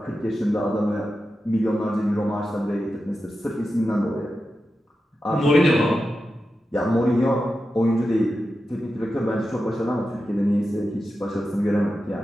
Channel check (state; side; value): normal; both; correlation 0.91